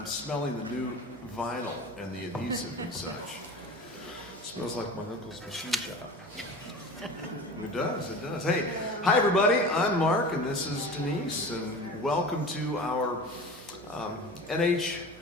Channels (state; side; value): noise; right; hum, 21 dB below the sound